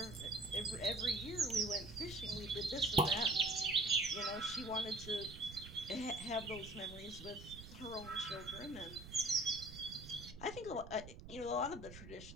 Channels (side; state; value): right; noise; rumble, 13 dB below the sound